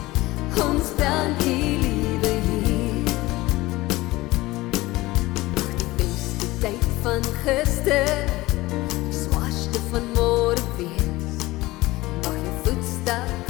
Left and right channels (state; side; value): quieter; right; 19.2 dB